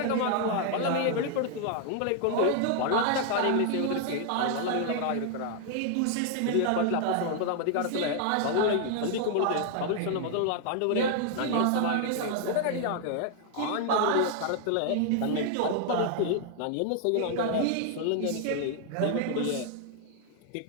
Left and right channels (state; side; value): different; both; correlation 0.00